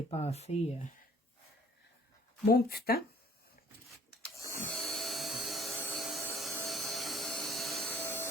mon petit temps.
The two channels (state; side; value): normal; both; correlation 0.57